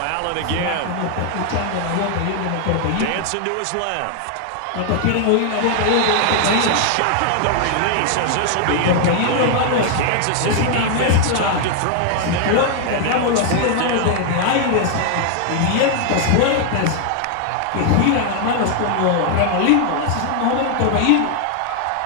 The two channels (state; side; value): different; both; correlation 0.00